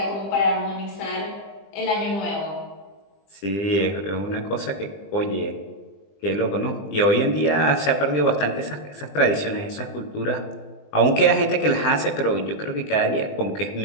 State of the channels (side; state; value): right; late; 20 ms